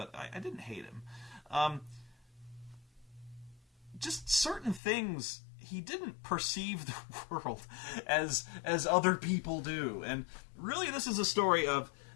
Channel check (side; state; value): right; drops out; at 4.8 s